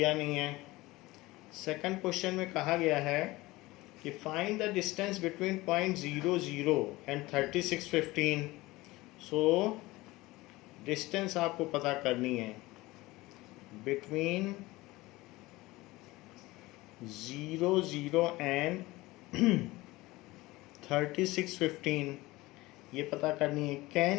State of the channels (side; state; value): right; quieter; 20.0 dB